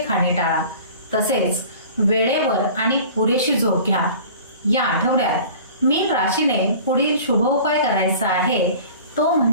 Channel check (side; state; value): both; inverted; correlation -0.43